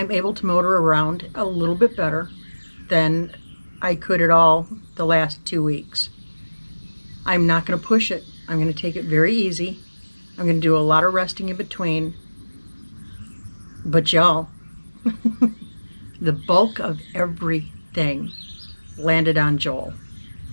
able to motor around a little bit better than I could at all the last 2 weeks. I'm not going to push it. I'm going to take it very easy. I'm going to do a lot of resting in between. But y'all, the bulk of everything landed on Joel.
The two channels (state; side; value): inverted; both; correlation -1.00